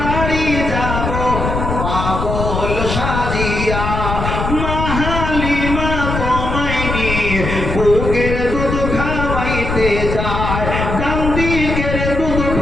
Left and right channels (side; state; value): left; noise; rumble, 3 dB below the sound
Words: যাব পাগল সাজিয়া। বুকের দুধ খাওয়াইতে যায়, ডান দিকের দুধ